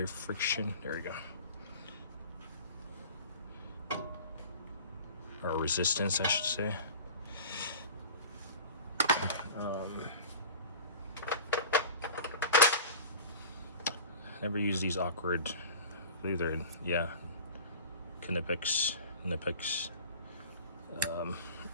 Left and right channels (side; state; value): both; inverted; correlation -0.38